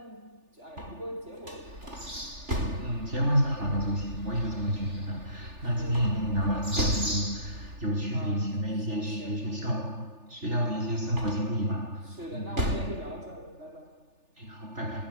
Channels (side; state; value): left; late; 3.4 ms